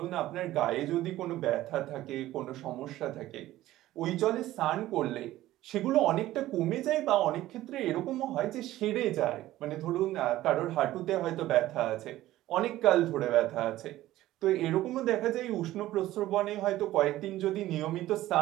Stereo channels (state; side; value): quieter; left; 15.3 dB